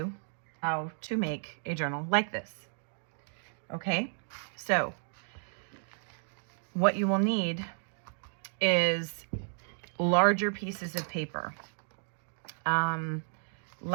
how to make a journal like this. Okay, so what you will need is larger pieces of paper,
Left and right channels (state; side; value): silent; left; 56 dB below the other